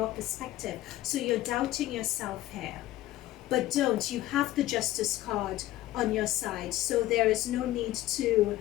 perspective. So you're doubting yourself here. But don't. You have the Justice card on your side. So there is no need to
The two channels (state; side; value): quieter; right; 15.5 dB